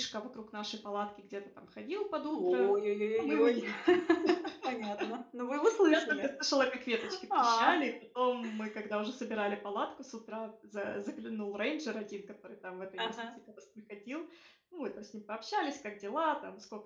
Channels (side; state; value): both; identical; correlation 1.00